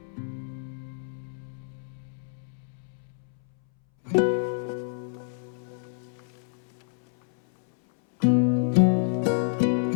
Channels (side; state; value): right; silent; 59 dB below the other